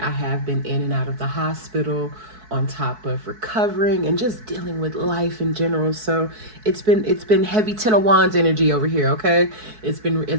have been in and out of the hospital on top of recovering and just dealing with life in general. So it's been heavy Ten of Wands energy over here, okay? It's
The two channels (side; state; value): left; late; 4.6 ms